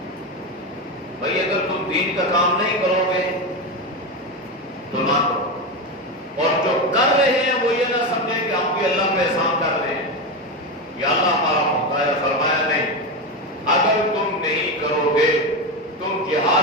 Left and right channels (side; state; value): both; normal; correlation 0.15